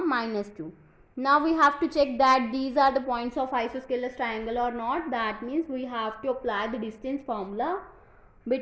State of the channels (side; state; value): both; identical; correlation 1.00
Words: minus 2. Now we have to check that these are the points of isosceles triangle or not. That means we have to apply the distance formula